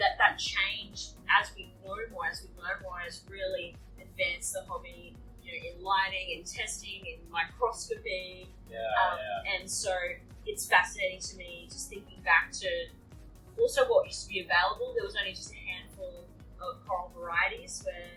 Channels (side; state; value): both; identical; correlation 1.00